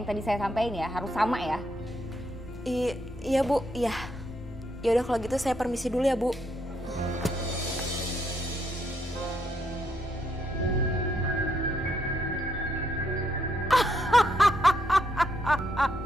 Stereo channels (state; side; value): normal; both; correlation 0.76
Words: yang tadi saya sampaikan ya, harus sama ya. Iya Bu, iya. Ya udah kalau gitu saya permisi dulu ya Bu.